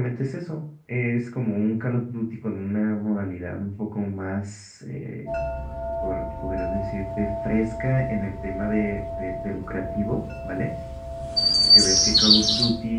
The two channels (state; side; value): identical; both; correlation 1.00